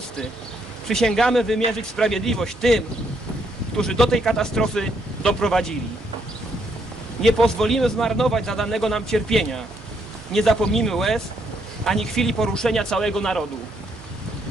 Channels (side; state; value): both; normal; correlation 0.74